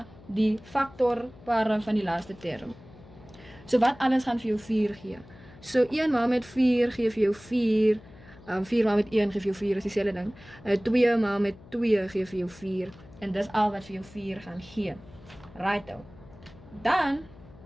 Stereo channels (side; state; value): left; noise; hum, 21 dB below the sound